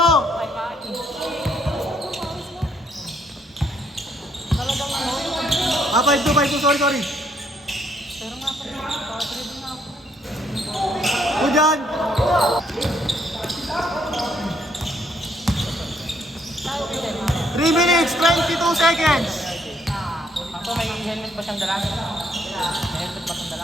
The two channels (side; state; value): both; normal; correlation 0.69